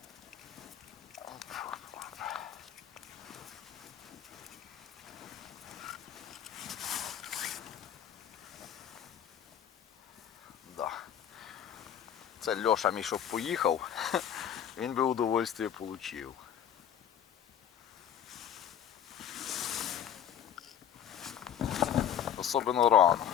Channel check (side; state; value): right; quieter; 9.5 dB